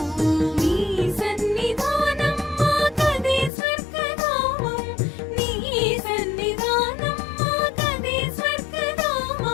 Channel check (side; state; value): right; drops out; at 3.5 s